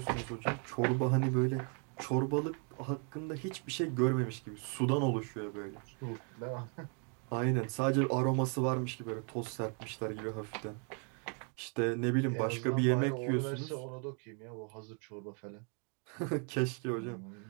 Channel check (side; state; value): left; quieter; 39.3 dB